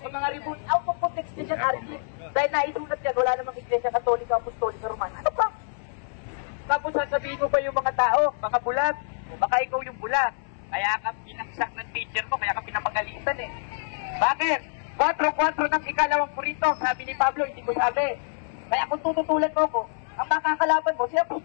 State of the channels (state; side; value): silent; right; 59 dB below the other